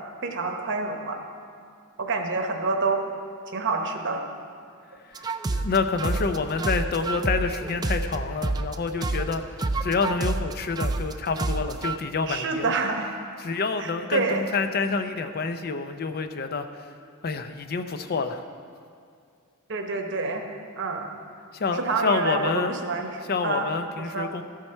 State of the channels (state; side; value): normal; both; correlation 0.08